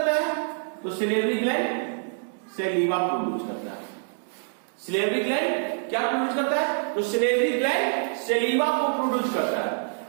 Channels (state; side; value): silent; left; digital silence